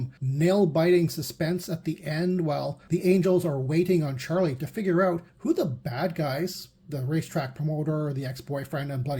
nail-biting suspense at the end while the Angels are waiting on Charlie to figure out who the bad guys, the racetrack promoter, the ex-boyfriend, and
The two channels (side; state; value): both; identical; correlation 1.00